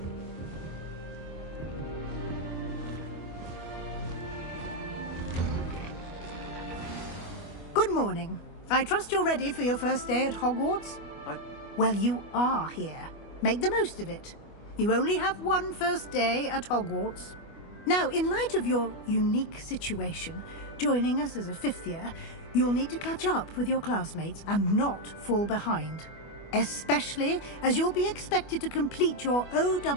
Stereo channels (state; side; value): late; right; 25 ms